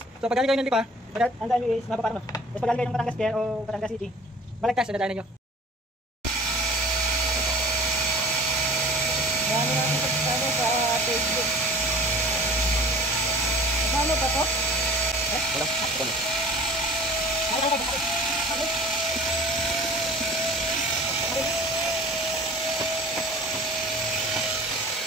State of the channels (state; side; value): normal; both; correlation 0.45